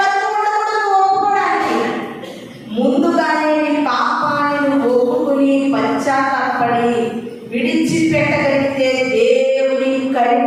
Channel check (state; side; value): identical; both; correlation 1.00